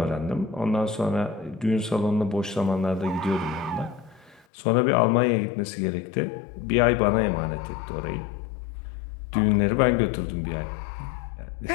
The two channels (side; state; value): right; drops out; at 4.4 s